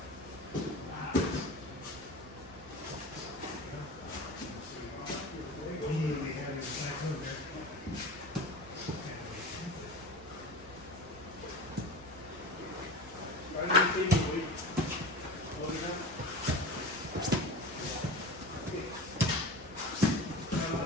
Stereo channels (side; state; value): both; normal; correlation 0.32